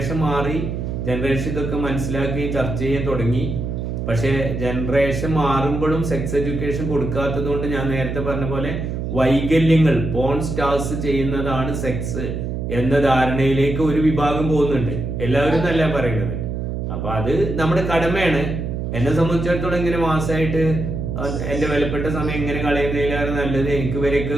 മാറി, ജനറേഷൻ ഇതൊക്കെ മനസ്സിലാക്കി ചർച്ച ചെയ്യാൻ തുടങ്ങി. പക്ഷെ ജനറേഷൻ മാറുമ്പോഴും സെക്സ് എഡ്യൂക്കേഷൻ കൊടുക്കാത്തത് കൊണ്ട് ഞാൻ നേരത്തെ പറഞ്ഞ പോലെ വൈകല്യങ്ങൾ പോൺ സ്റ്റാർസ് ചെയ്യുന്നതാണ് സെക്സ് എന്ന ധാരണയിലേക്ക് ഒരു വിഭാഗം പോകുന്നുണ്ട്. എല്ലാവരും എന്നല്ല പറയുന്നത്. അപ്പൊ അത് നമ്മുടെ കടമയാണ്. എന്നെ സംബന്ധിച്ചിടത്തോളം ഇങ്ങനെ മാസമായിട്ട് എന്റെ വിലപ്പെട്ട സമയം ഇങ്ങനെ കളയുന്നതിലാണ് നല്ലത്. എനിക്ക് വരെയൊക്കെ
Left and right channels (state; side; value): noise; right; hum, 4 dB below the sound